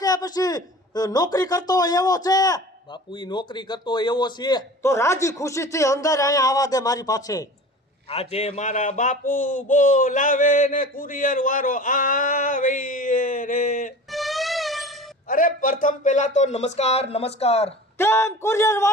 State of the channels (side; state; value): both; normal; correlation 0.39